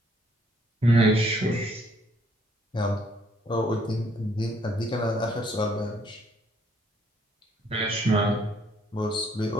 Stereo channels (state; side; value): normal; both; correlation 0.66